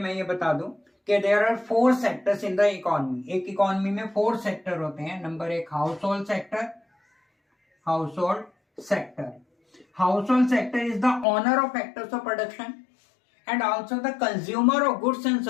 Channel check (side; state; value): right; drops out; at 11.2 s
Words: ये बता दूं कि there are 4 sectors in the economy. एक इकोनॉमी में 4 सेक्टर होते हैं। Number 1 household sector, Household sector is the owner of factors of production and also the consumer of goods and